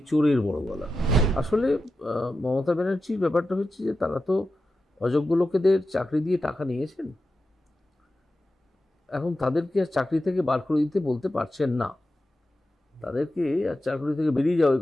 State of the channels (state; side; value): normal; both; correlation 0.91